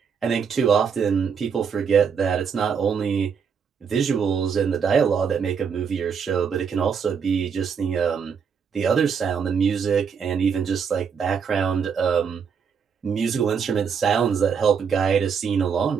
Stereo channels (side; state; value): left; quieter; 6.6 dB